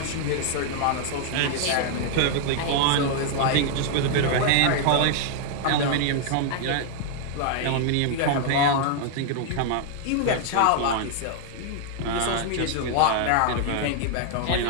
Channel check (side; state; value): both; different; correlation 0.00